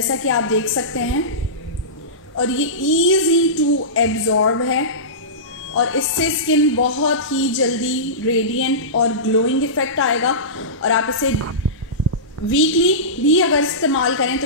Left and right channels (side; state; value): both; normal; correlation -0.19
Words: कि आप देख सकते हैं। और ये इजी टू एब्जॉर्ब है और इससे स्किन बहुत ही जल्दी रेडिएंट और ग्लोइंग इफेक्ट आएगा। और आप इसे वीकली भी अगर इस्तेमाल करें तो